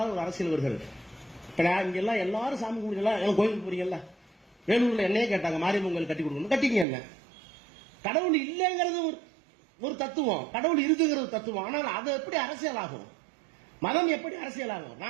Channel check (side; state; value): left; drops out; at 6.9 s